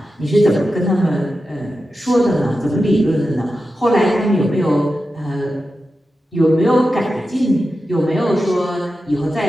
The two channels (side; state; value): both; normal; correlation 0.91